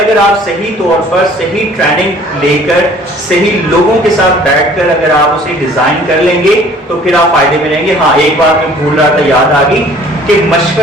آپ صحیح طور پر صحیح ٹریننگ لے کر صحیح لوگوں کے ساتھ بیٹھ کر اگر آپ اسے ڈیزائن کر لیں گے تو پھر آپ فائدے میں رہیں گے. ہاں ایک بات میں بھول رہا تھا، یاد آ گئی کہ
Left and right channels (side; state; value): both; normal; correlation 0.53